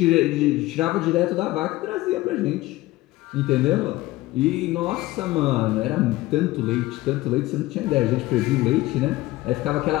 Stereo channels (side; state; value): right; quieter; 18.1 dB